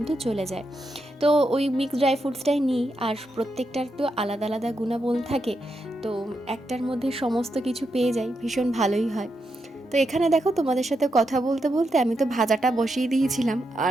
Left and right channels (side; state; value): both; normal; correlation 0.84